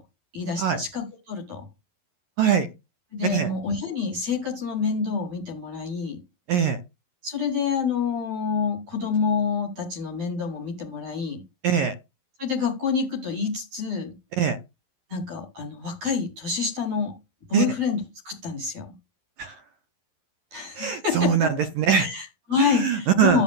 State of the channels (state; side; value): late; left; 11 ms